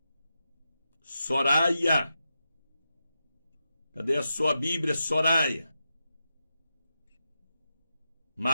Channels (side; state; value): both; inverted; correlation -0.88